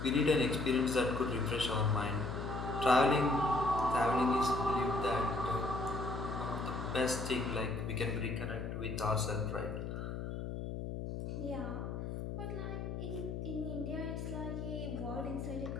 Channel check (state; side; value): noise; left; hum, 5 dB below the sound